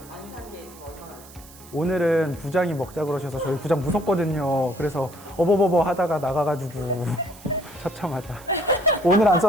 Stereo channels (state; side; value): noise; right; hiss, 21 dB below the sound